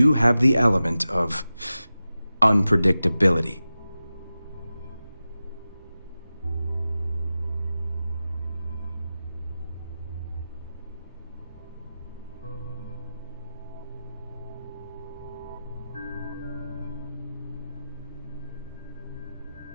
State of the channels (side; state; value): both; inverted; correlation -0.94